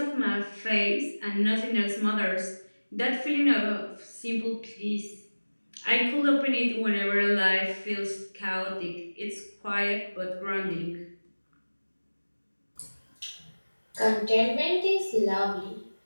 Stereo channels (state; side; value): inverted; both; correlation -1.00